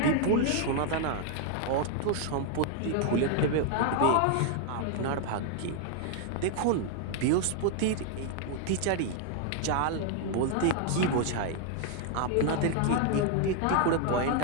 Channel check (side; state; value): both; different; correlation 0.00